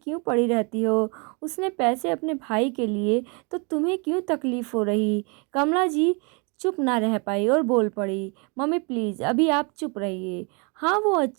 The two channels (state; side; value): quieter; left; 33.1 dB